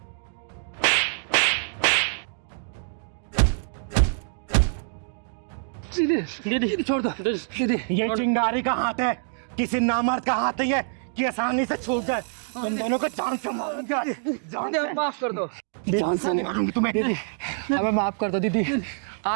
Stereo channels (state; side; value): silent; left; digital silence